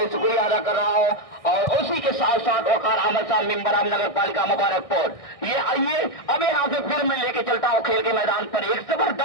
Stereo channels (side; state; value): right; late; 1.6 ms